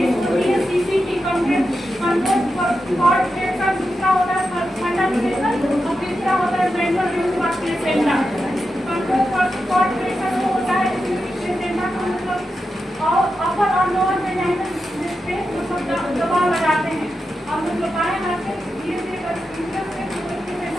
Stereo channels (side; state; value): both; normal; correlation 0.89